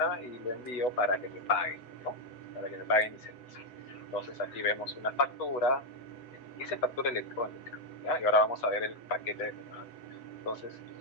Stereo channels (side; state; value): right; late; 8.1 ms